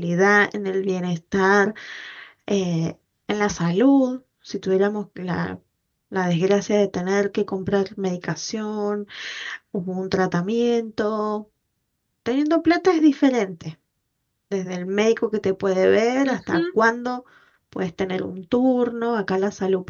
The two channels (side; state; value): both; identical; correlation 1.00